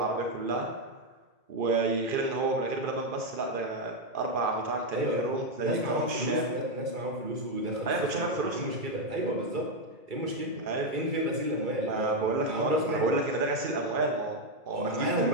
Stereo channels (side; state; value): left; late; 2.3 ms